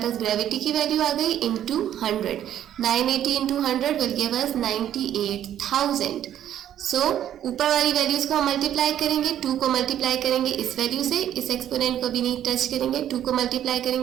पास ग्रेविटी की वैल्यू आ गई, into 100. 980 into 100 will give us 98,000. सो ऊपर वाली वैल्यूज को हम मल्टीप्लाई करेंगे, 2 को मल्टीप्लाई करेंगे इस वैल्यू से, इस एक्सपोनेंट को भी नहीं टच करेंगे, 2 को मल्टीप्लाई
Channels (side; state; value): left; quieter; 10.9 dB